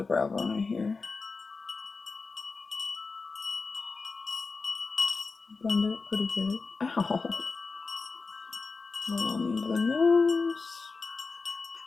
brow bone right here. Blend it pretty good. Ow! Roll into the nose.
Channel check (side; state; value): right; quieter; 4.3 dB